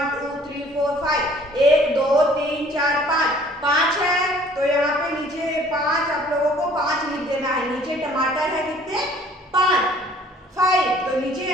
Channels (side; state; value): both; normal; correlation 0.55